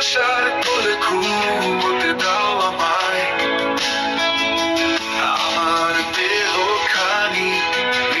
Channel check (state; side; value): identical; both; correlation 1.00